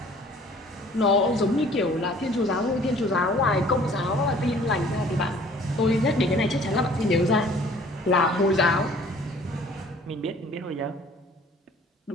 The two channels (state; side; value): normal; both; correlation 0.53